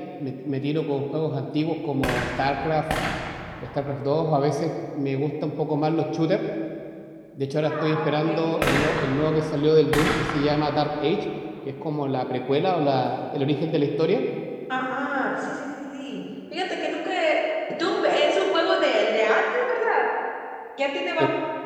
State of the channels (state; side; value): identical; both; correlation 1.00